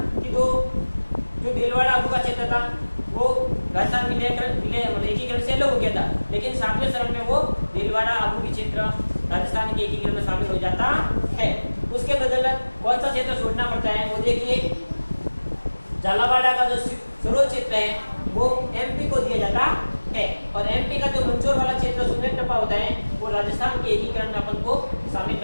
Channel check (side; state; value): both; inverted; correlation -1.00